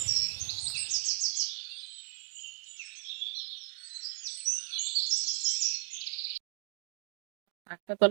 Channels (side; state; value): left; silent; digital silence